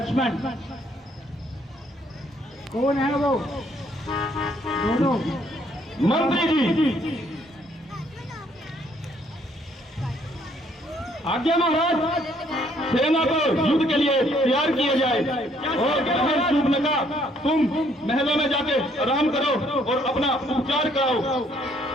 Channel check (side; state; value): both; normal; correlation 0.66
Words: कौन है वो दोनों? मंत्री जी। आज्ञा महाराज, सेना को युद्ध के लिए तैयार किया जाए। और सूपनका, तुम महलों में जाके आराम करो और अपना उपचार कराओ।